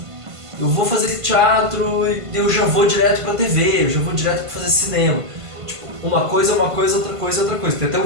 eu vou fazer teatro e eu já vou direto para TV, eu já vou direto para fazer cinema. Tipo, uma coisa é uma coisa, outra coisa é outra coisa. Tem até um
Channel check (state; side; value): late; left; 1.5 ms